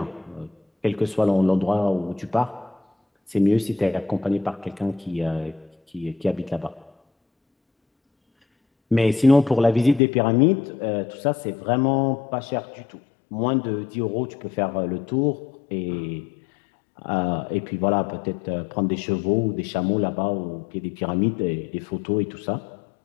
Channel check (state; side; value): drops out; right; at 10.0 s